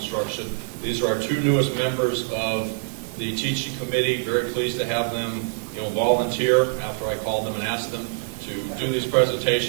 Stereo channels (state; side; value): silent; left; digital silence